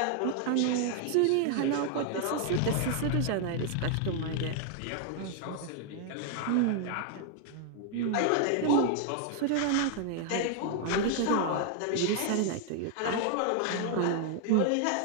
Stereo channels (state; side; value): different; both; correlation 0.00